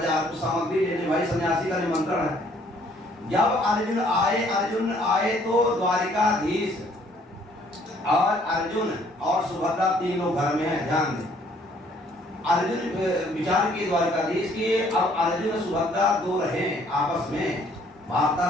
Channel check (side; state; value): both; normal; correlation 0.62